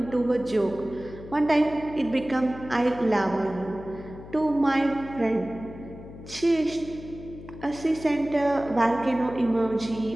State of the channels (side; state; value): left; noise; hum, 15 dB below the sound